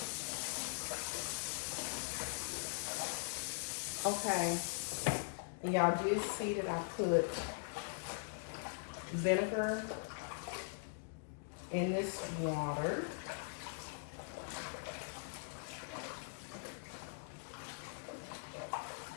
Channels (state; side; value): silent; right; digital silence